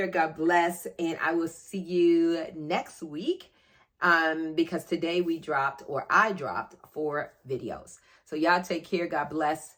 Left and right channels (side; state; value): both; identical; correlation 1.00